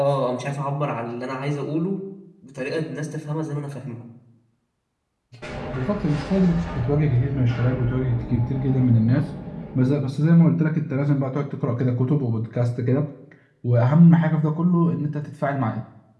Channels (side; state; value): both; identical; correlation 1.00